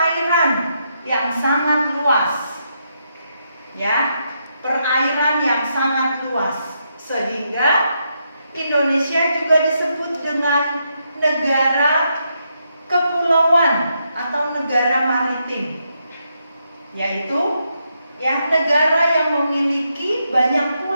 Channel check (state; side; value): inverted; both; correlation -0.80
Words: yang sangat luas. Ya, perairan yang sangat luas, sehingga Indonesia juga disebut dengan negara kepulauan atau negara maritim, yaitu yang negara yang memiliki banyak